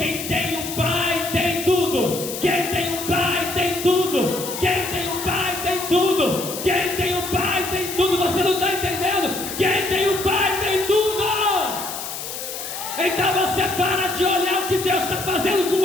tem um Pai tem tudo. Quem tem um Pai tem tudo. Quem tem um Pai tem tudo. Quem tem um Pai tem tudo. Você não está entendendo? Quem tem um Pai tem tudo. Então você para de olhar o que Deus está fazendo com o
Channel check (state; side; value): noise; left; hiss, 7 dB below the sound